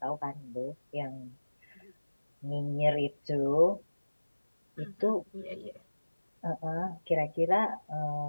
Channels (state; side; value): inverted; both; correlation -1.00